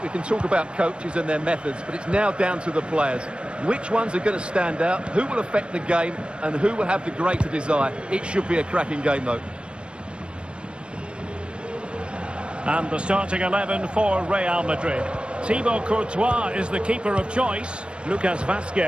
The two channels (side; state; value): left; late; 0.057 ms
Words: we can talk about coaches and their methods, but it's now down to the players. Which ones are going to stand out, who will affect the game, and who will have the greater desire? It should be a cracking game, though. And the starting 11 for Real Madrid. Thibaut Courtois is the keeper of choice. Lucas